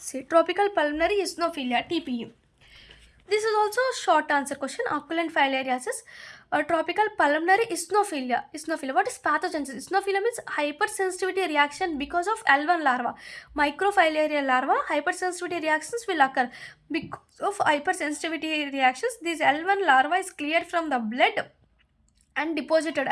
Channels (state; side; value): identical; both; correlation 1.00